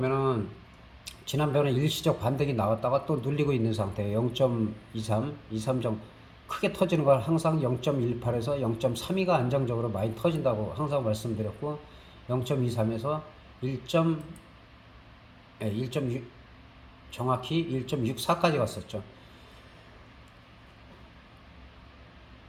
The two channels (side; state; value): both; identical; correlation 1.00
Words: 지난번에 일시적 반등이 나왔다가 또 눌리고 있는 상태예요. 0.23점 크게 터지는 걸 항상 0.18에서 0.32가 안정적으로 많이 터진다고 항상 말씀드렸고 0.23에서 1.6 정확히 1.64까지 갔었죠.